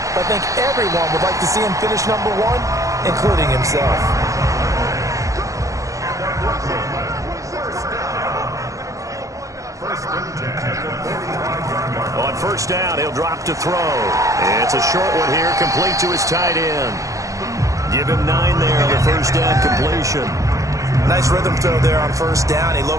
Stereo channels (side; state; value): left; late; 0.16 ms